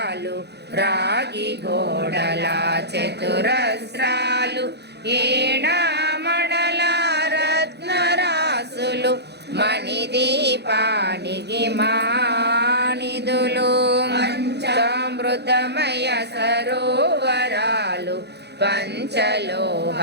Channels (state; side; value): late; left; 0.49 ms